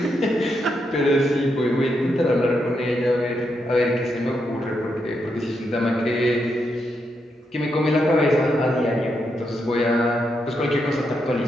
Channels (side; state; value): both; normal; correlation 0.82